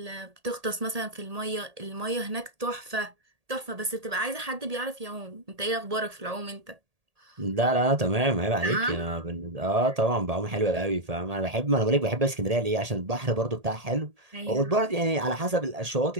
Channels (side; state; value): left; late; 1.8 ms